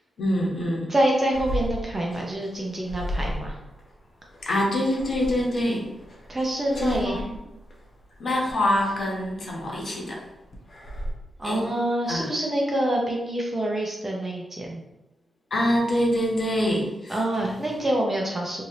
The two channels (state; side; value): normal; both; correlation 0.85